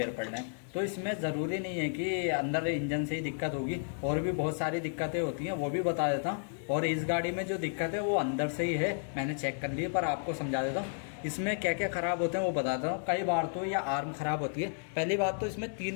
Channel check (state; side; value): silent; right; 56 dB below the other